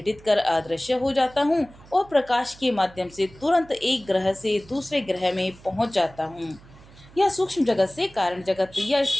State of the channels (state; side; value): noise; right; hum, 23 dB below the sound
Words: कर अदृश्य हो जाता हूँ और प्रकाश के माध्यम से तुरंत एक ग्रह से दूसरे ग्रह में पहुँच जाता हूँ, या सूक्ष्म जगत से कारण जगत या